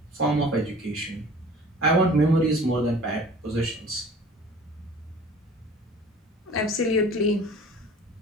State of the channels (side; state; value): both; normal; correlation 0.46